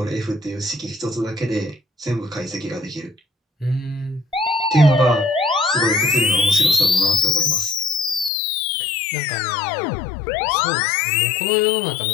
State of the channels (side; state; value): right; drops out; at 8.3 s